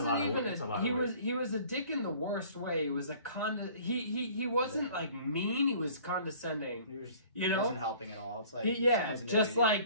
lot of even weight. That's a lot he of was weight. he was a dick in the worst way. He was a he wasn't like mean. He was condescending. He wasn't helping at all. It's like just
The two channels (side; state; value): both; inverted; correlation -0.51